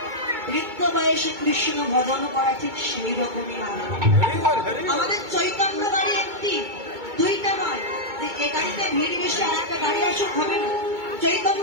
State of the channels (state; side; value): late; left; 2.2 ms